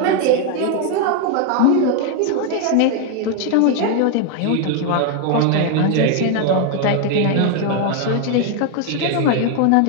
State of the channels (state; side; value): different; both; correlation 0.01